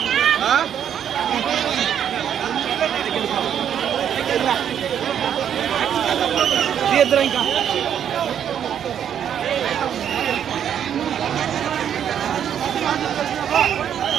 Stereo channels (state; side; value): quieter; left; 9.1 dB